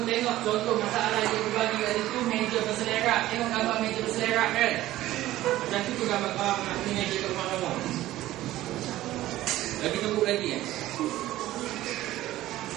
tengok contoh masalah yang dibagi kat situ, meja berselerak. Tengok gambar meja berselerak kan? Macam tu gambar meja kat rumah kamu. Lagi tunggu lagi kan?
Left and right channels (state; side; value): quieter; left; 15.3 dB